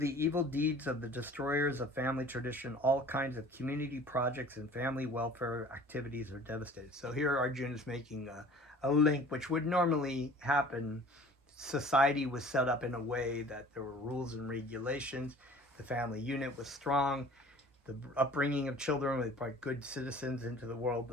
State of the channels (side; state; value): both; normal; correlation 0.47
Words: evil deeds of the destroyers of family tradition, all kinds of community projects and family welfare activities are devastated. So here Arjuna is making a link which would normally happen. Society was set up in a way that there were rules and regulations. The family unit was strong. The upbringing of children, they brought good citizens into the world.